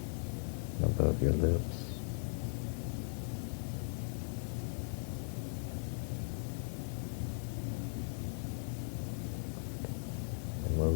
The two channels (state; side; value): silent; right; digital silence